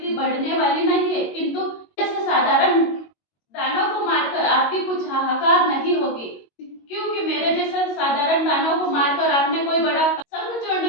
बढ़ने वाली नहीं है, किंतु जैसे साधारण दानव को मारकर आपकी कुछ हाहाकार नहीं होगी, क्योंकि मेरे जैसे साधारण दानव को मारकर आपने कोई बड़ा।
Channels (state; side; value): late; right; 22 ms